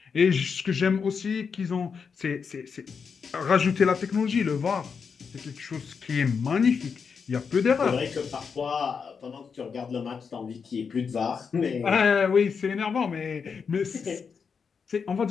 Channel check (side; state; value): right; quieter; 5.9 dB